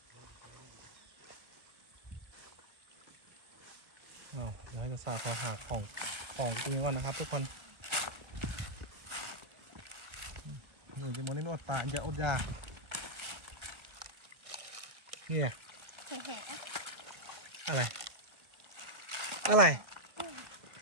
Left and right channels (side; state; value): left; late; 1.0 ms